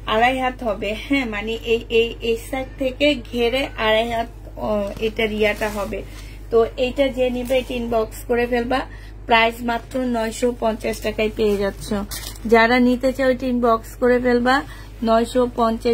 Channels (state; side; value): identical; both; correlation 1.00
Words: 2.5 হাত হবে। হ্যাঁ, মানে এই সাইড থেকে ঘেরে 2.5 হাত এটা রিয়াটা হবে। তো এইটা যে নিবে এটা ইনবক্স করে ফেলবা। প্রাইস মাত্র 950 টাকায় পেয়ে যাচ্ছ। যারা নিতে চাও এটা ইনবক্স করে ফেলবা।